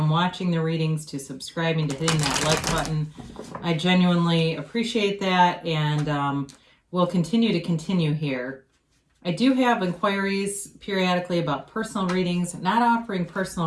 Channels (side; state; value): both; identical; correlation 1.00